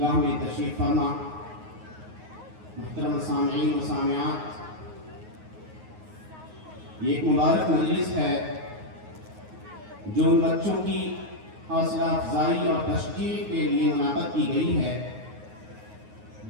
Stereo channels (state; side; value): late; left; 9.5 ms